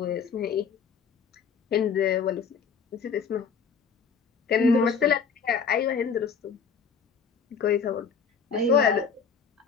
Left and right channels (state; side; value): quieter; right; 6.1 dB